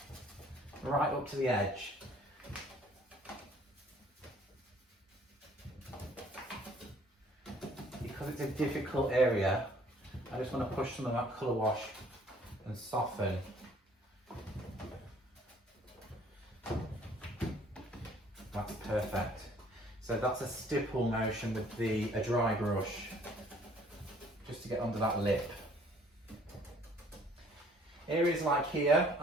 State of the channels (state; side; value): normal; both; correlation 0.58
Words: right up to the edge. Because it's a difficult area, I just want to push some of that colour wash and soften. That's perfect. So that's a stipple motion with a dry brush, just to get under that lip. Areas like here,